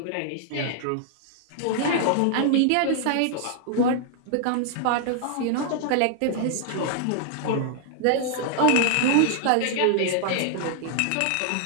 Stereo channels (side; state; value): both; different; correlation -0.01